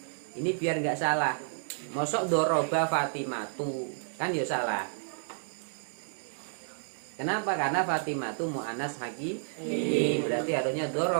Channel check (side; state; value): left; silent; digital silence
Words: ini biar nggak salah. Mosok doroba Fatimatu kan ya salah. Kenapa? Karena Fatimatu mu'annas hakiki, berarti harusnya